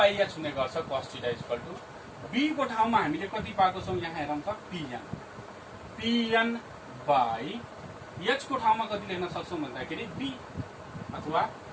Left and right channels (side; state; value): both; identical; correlation 1.00